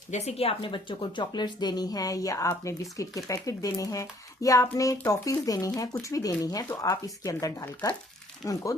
बच्चों को चॉकलेट्स देनी है, या आपने बिस्किट के पैकेट देने हैं, या आपने टॉफीज देनी है, कुछ भी देनी है, तो आप इसके अंदर डालकर उनको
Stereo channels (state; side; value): normal; both; correlation 0.61